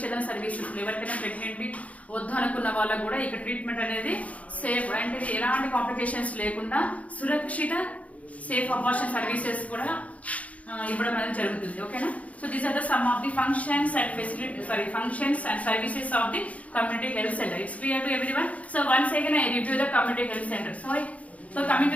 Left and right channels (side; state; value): right; late; 0.067 ms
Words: సర్వీసెస్. ఎవరికైనా ప్రెగ్నెంట్ వద్దు అనుకున్న వాళ్ళకు కూడా ఇక్కడ ట్రీట్మెంట్ అనేది సేఫ్ అంటే ఎలాంటి కాంప్లికేషన్స్ లేకుండా సురక్షిత సేఫ్ అబార్షన్ సర్వీసెస్ కూడా ఇవ్వడం అనేది జరుగుతుంది. ఓకేనా? So these are the some of the functions and functions and services of the community health centre. It's clear to everyone. So once again I review the community health center. So coming to